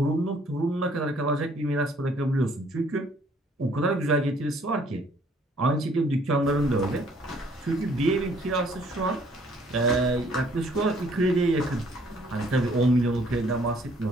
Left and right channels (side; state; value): both; normal; correlation 0.61